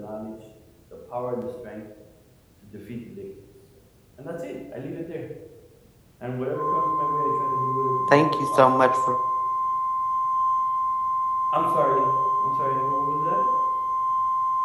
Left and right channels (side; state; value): both; identical; correlation 1.00